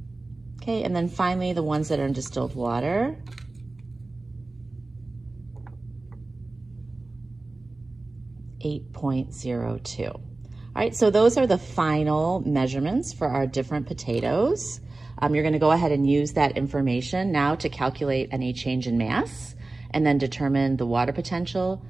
Okay, and then finally the ones that are in distilled water. 8.02. All right, so those are the final measurements for our different potatoes. You're gonna go ahead and use that information now to calculate any change in mass and then determine the water potential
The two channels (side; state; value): left; quieter; 3.2 dB